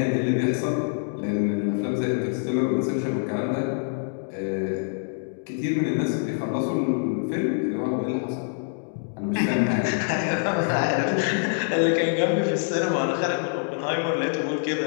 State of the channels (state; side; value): silent; right; digital silence